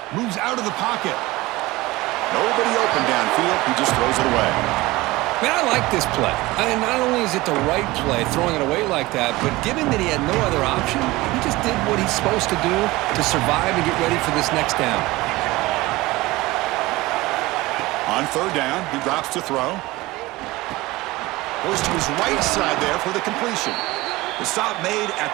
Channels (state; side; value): quieter; left; 20.1 dB